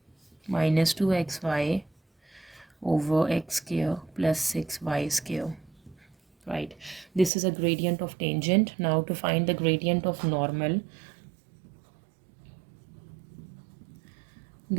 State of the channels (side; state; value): left; drops out; at 7.3 s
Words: minus 2xy over x square plus 6y square, right? This is a gradient of tangent. Now to find the gradient of normal,